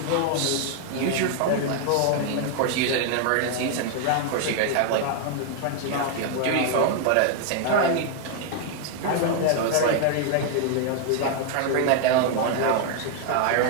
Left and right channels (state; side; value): different; both; correlation 0.00